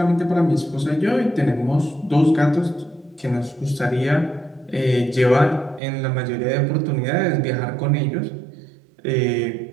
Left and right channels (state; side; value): drops out; left; at 5.8 s